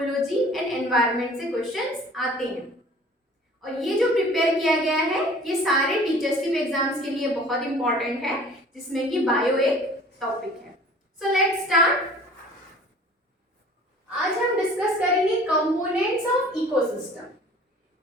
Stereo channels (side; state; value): both; normal; correlation 0.48